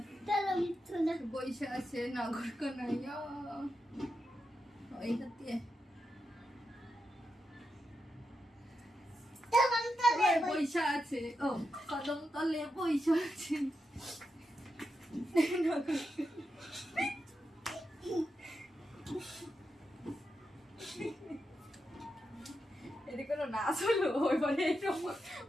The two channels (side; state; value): both; normal; correlation 0.87